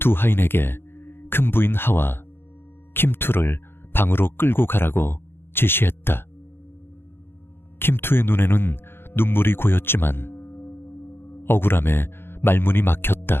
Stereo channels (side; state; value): right; late; 0.11 ms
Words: 하인에게 큰 부인 하와 킴투를 방으로 끌고 가라고 지시했다. 킴투의 눈에는 눈물이 고였지만 억울함에 말문이